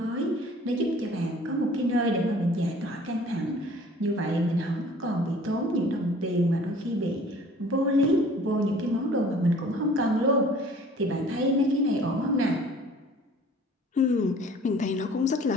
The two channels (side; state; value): both; normal; correlation 0.50